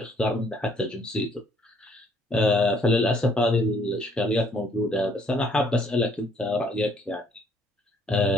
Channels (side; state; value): both; normal; correlation 0.64